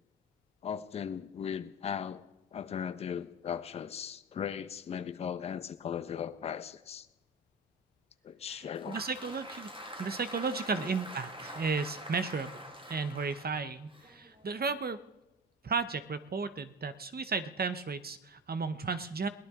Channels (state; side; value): normal; both; correlation 0.29